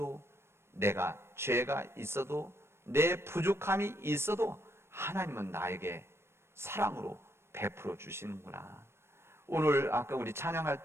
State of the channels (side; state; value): left; late; 0.12 ms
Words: 내가 죄가 있어도, 내 부족함이 있어도 하나님은 나에게 사랑으로 베풀어 주시는구나. 오늘 아까 우리 찬양할